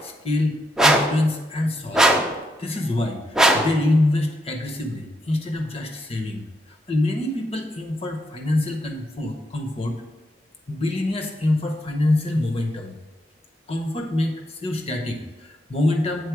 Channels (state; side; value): normal; both; correlation 0.80